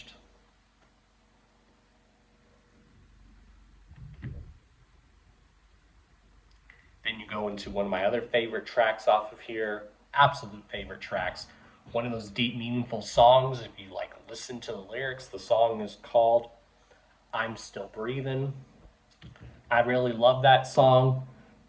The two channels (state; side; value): identical; both; correlation 1.00